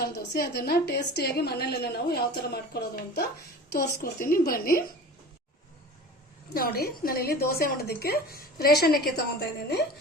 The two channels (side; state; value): both; normal; correlation 0.37